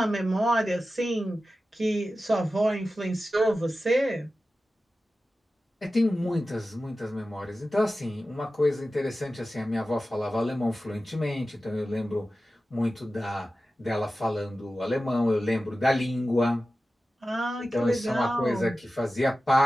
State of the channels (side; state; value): both; normal; correlation 0.94